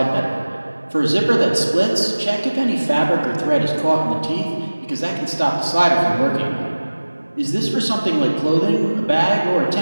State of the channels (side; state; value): both; inverted; correlation -1.00